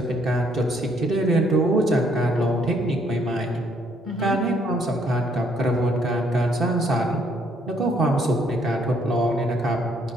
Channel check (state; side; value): normal; both; correlation 0.68